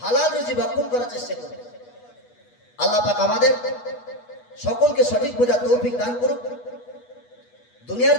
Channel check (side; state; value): right; late; 8.2 ms